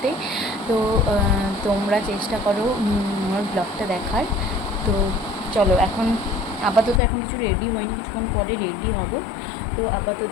তো তোমরা চেষ্টা করো আমার ব্লগটা দেখার। তো চলো, এখন আপাতত এখন কিছু রেডি হয়নি, কিছুক্ষণ পরে রেডি হব। তো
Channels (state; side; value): drops out; right; at 7.0 s